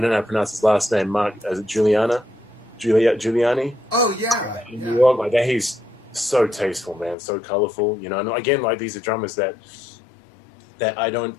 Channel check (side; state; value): right; drops out; at 7.2 s